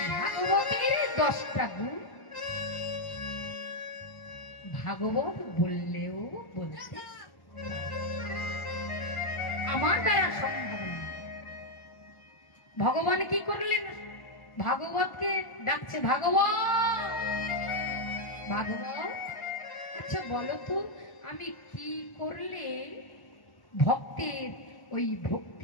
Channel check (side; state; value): right; late; 1.1 ms